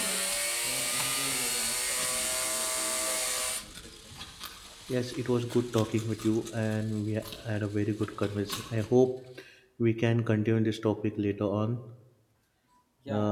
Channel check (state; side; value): identical; both; correlation 1.00